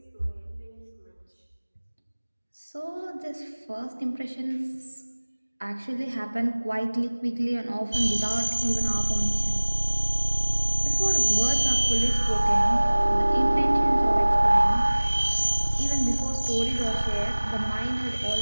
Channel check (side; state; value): both; inverted; correlation -1.00